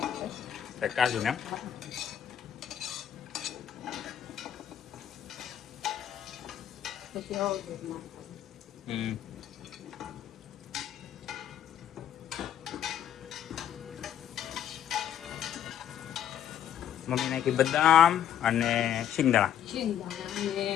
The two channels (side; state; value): right; quieter; 10.1 dB